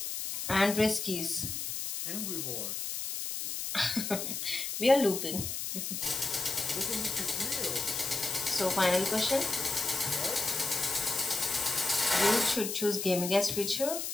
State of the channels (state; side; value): noise; left; hiss, 4 dB below the sound